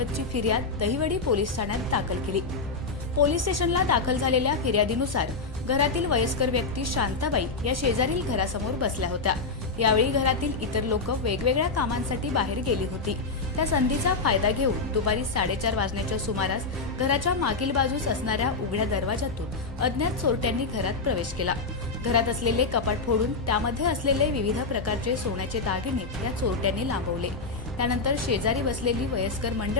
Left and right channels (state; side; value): quieter; right; 4.0 dB